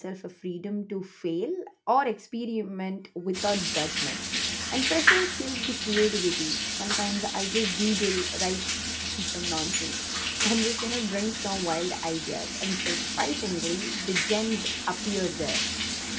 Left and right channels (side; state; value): both; identical; correlation 1.00